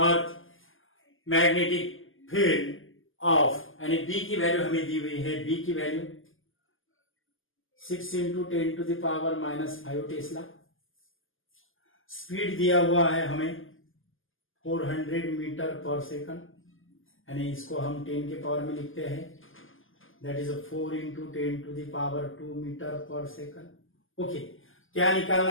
magnetic field of, यानी बी की वैल्यू हमें दी हुई है, बी की वैल्यू 6 into 10 to the power -5 tesla. Speed दिया हुआ है हमें 400 मीटर पर सेकंड, यानी इसको हम 10 के पावर में लिखते हैं, that is 4 into 10 to the power 2 metre पर सेकंड। ओके, क्या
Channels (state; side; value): late; right; 0.59 ms